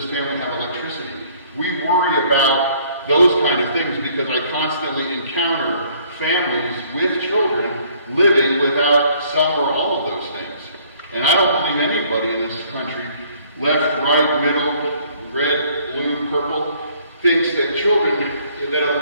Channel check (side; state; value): both; inverted; correlation -0.60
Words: family have electricity? We worry about those kind of things, because I constantly encounter families with children living without some or all of those things. And I don't believe anybody in this country, left, right, middle, red, blue, purple, thinks that children, that